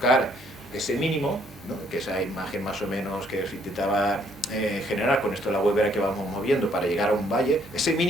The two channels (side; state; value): both; normal; correlation 0.66